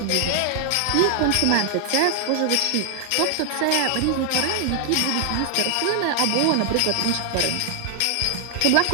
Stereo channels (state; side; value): different; both; correlation 0.00